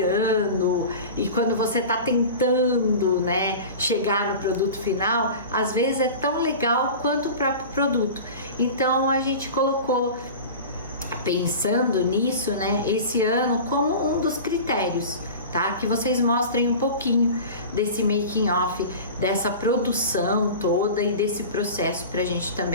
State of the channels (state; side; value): inverted; both; correlation -0.34